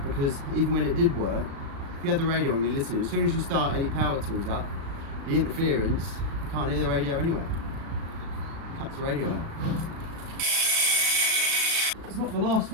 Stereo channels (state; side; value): late; left; 36 ms